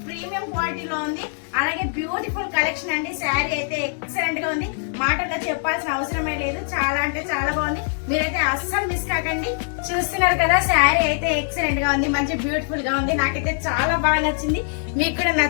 ప్రీమియం క్వాలిటీలో ఉంది. అలాగే బ్యూటిఫుల్ కలెక్షన్ అండి. శారీ అయితే ఎక్సలెంట్ గా ఉంది, మాటల్లో చెప్పాల్సిన అవసరమే లేదు. చాలా అంటే చాలా బాగుంది, మీరైతే అస్సలు మిస్ కాకండి. చూస్తున్నారు కదా, శారీ అయితే ఎక్సలెంట్ గా ఉంది, మంచి బ్యూటిఫుల్ గా ఉంది. నాకైతే చాలా బాగా నచ్చింది, మీకు కూడా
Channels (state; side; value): silent; right; 64 dB below the other